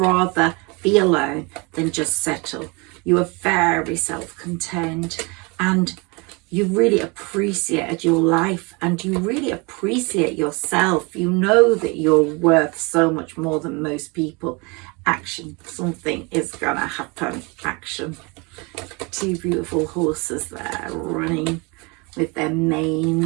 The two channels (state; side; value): quieter; left; 28.7 dB